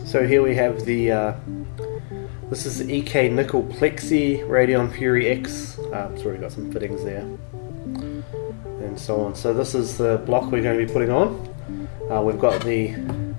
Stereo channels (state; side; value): silent; right; 59 dB below the other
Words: So here we have this is the EK Nickel Plexi Radeon Fury X. It's already got some fittings there and so on. So this is the block we're going to be putting on. We've got the